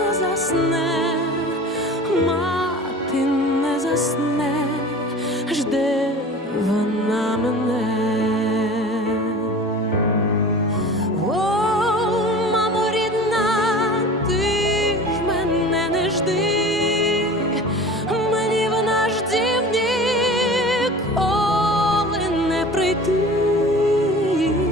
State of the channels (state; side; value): normal; both; correlation 0.39